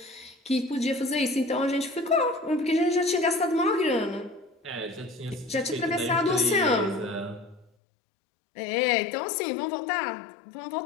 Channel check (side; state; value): right; drops out; at 7.7 s